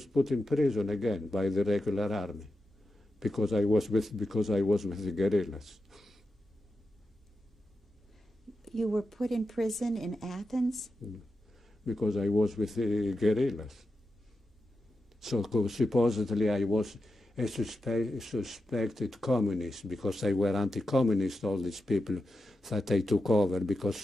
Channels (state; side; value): normal; both; correlation 0.90